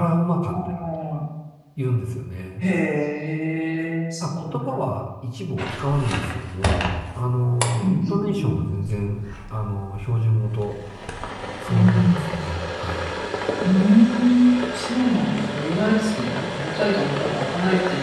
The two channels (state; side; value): identical; both; correlation 1.00